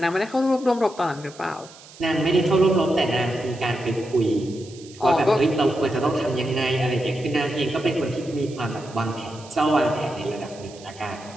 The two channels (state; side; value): noise; right; hiss, 21 dB below the sound